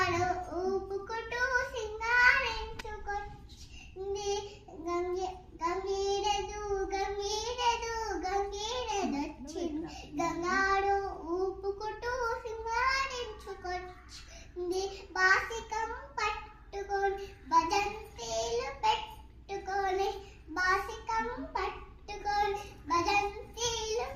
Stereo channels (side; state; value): both; identical; correlation 1.00